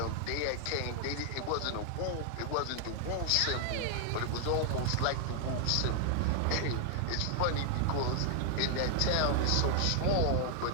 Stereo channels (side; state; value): both; different; correlation 0.00